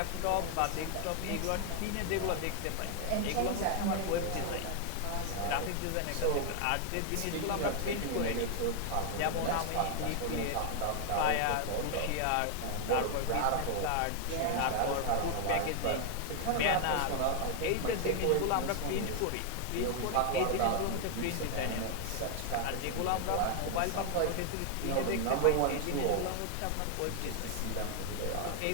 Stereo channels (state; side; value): different; both; correlation 0.00